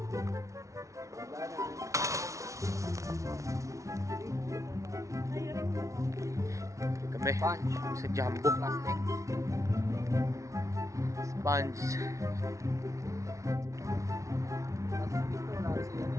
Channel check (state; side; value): late; left; 0.15 ms